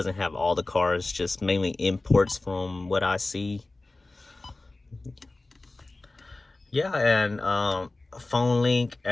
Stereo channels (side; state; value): right; quieter; 3.1 dB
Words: have all the cars, just mainly imports from what I see. Yeah, and phone link,